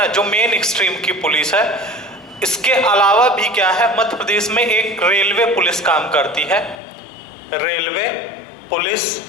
जो मेन स्ट्रीम की पुलिस है, इसके अलावा भी क्या है, मध्य प्रदेश में एक रेलवे पुलिस काम करती है। रेलवे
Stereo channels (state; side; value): drops out; right; at 6.8 s